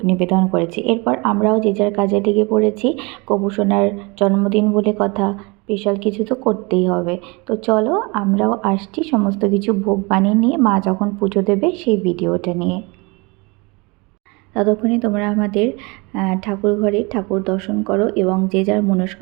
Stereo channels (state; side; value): quieter; left; 27.4 dB